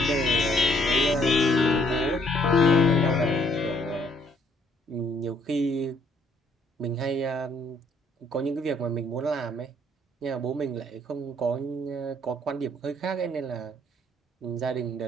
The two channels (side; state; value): both; normal; correlation 0.66